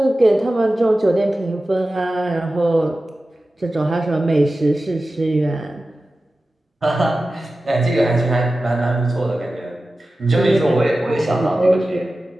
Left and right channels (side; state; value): both; normal; correlation 0.95